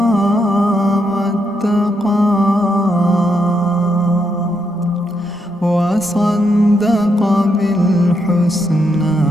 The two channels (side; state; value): both; normal; correlation 0.79